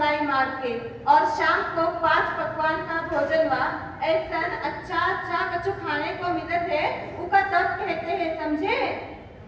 मार के और शाम को 5 पकवान का भोजन हुआ। ऐसा अच्छा कछु खाने को मिलत है, उका तब कहते हैं, समझे?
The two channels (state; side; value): identical; both; correlation 1.00